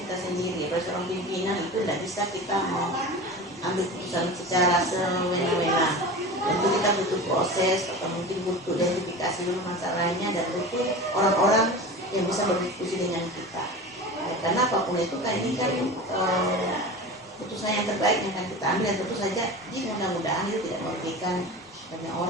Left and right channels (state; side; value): normal; both; correlation 0.31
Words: sendiri. Kalau seorang pimpinan itu tidak bisa kita mengambil keputusan secara semena-mena. Tentu kita butuh proses atau mungkin butuh identifikasi dulu masalahnya dan butuh orang-orang yang bisa berdiskusi dengan kita. Karena apapun itu kan ini kan keputusan yang terbaik yang akan kita ambil dan tentu saja di mudah-mudahan itu tidak merugikan banyak